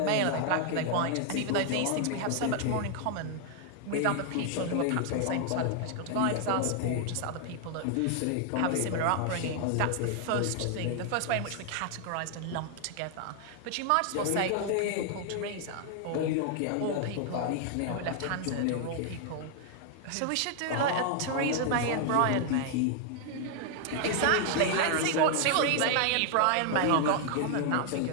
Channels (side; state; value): both; different; correlation 0.00